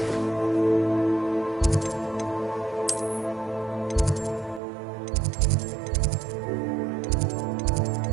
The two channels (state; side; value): drops out; left; at 4.6 s